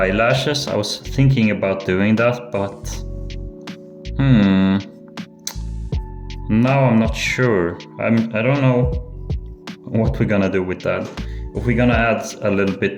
I was thinking about doing that, but now I'm not sure. I don't know what we're gonna do with that. If we're gonna add a little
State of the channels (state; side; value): identical; both; correlation 1.00